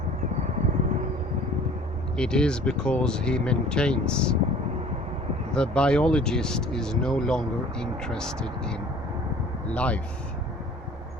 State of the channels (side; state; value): both; normal; correlation 0.48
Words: It is because he maintains the biologist is no longer interested in life,